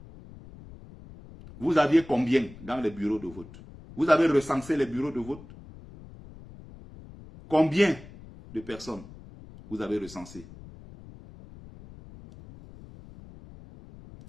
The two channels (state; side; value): noise; left; rumble, 18 dB below the sound